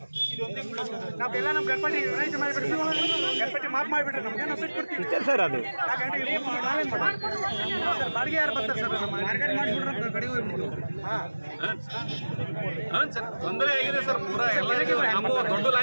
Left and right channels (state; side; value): inverted; both; correlation -1.00